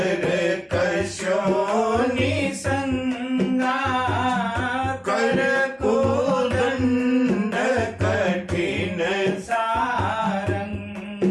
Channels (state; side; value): identical; both; correlation 1.00